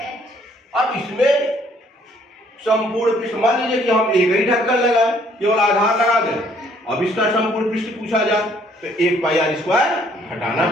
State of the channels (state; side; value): normal; both; correlation 0.63